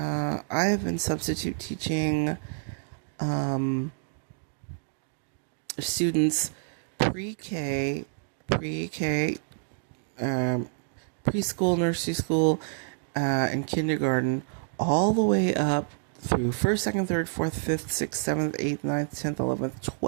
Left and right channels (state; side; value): silent; left; digital silence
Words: have been substitute teaching students pre-K, preschool, nursery school, and kindergarten, all the way up through 1st, 2nd, 3rd, 4th, 5th, 6th, 7th, 8th, 9th, 10th,